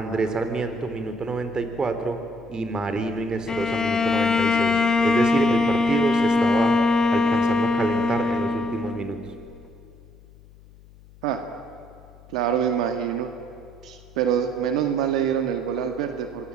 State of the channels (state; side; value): noise; left; hum, 24 dB below the sound